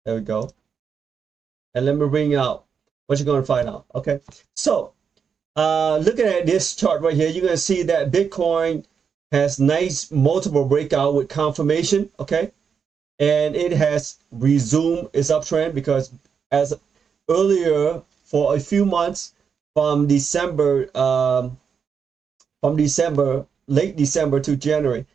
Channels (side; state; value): left; quieter; 6.6 dB